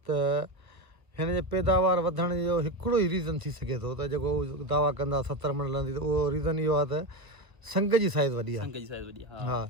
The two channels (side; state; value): left; late; 1.4 ms